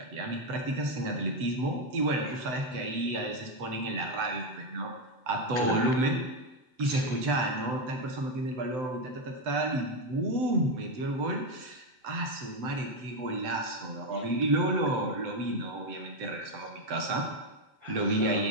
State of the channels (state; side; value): late; left; 7.8 ms